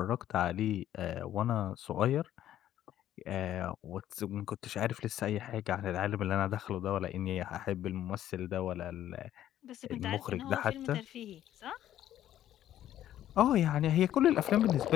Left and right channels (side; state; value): right; quieter; 12.0 dB